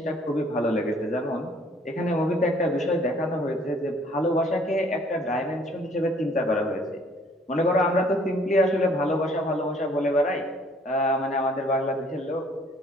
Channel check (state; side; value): normal; both; correlation 0.59